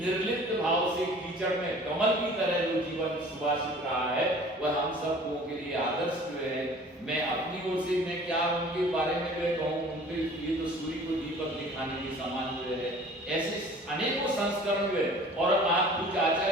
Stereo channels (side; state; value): both; normal; correlation 0.47